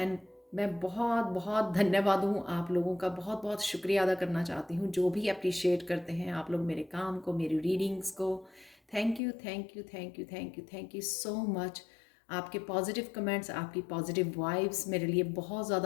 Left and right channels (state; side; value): drops out; right; at 9.2 s